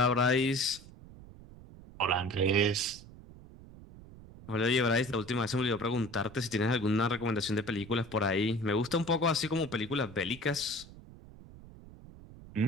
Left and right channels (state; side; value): noise; right; rumble, 18 dB below the sound